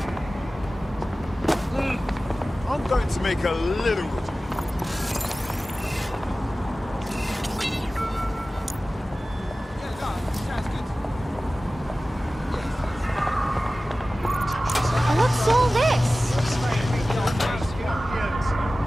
I'm going to make a little. What's all this?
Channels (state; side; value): normal; both; correlation 0.96